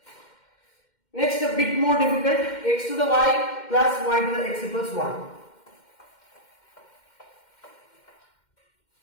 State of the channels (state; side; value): late; right; 2.1 ms